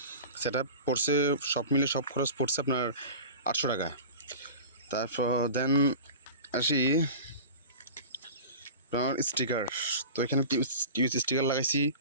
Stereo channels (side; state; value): both; inverted; correlation -0.34